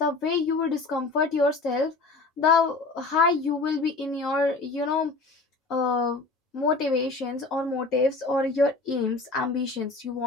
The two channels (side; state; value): right; quieter; 3.6 dB